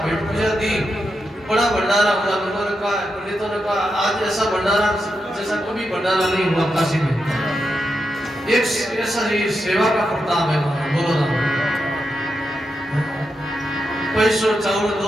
भेंट पूजा दी, बड़ा भंडारा हुआ। लोगों ने कहा, पंडितों ने कहा आज ऐसा भंडारा जैसा कभी भंडारा नहीं हुआ काशी में। एक ऐसा ही सेवा का प्रताप है। बोलो ना। पैसों चाउल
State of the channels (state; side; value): normal; both; correlation 0.86